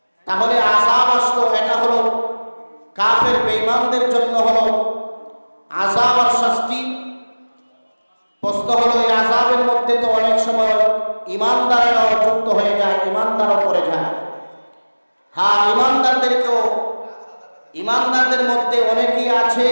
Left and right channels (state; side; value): inverted; both; correlation -1.00